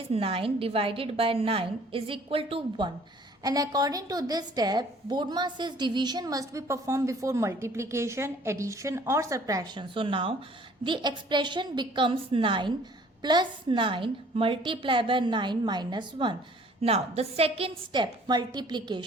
9 divided by 9 is equal to 1. And according to this step, BODMAS says division must be performed before multiplication, addition or subtraction. So now the expression becomes 9 plus 9 multiplied by 9 minus 1. Now the second step,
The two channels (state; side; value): normal; both; correlation 0.54